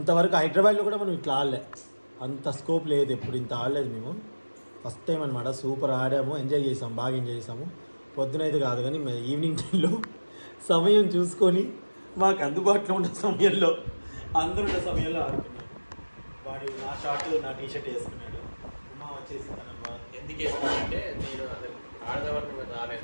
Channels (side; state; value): both; inverted; correlation -1.00